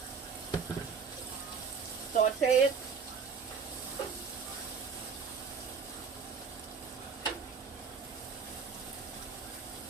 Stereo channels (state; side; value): quieter; left; 5.8 dB